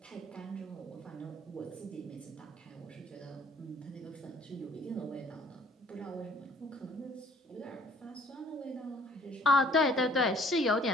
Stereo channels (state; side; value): normal; both; correlation 0.57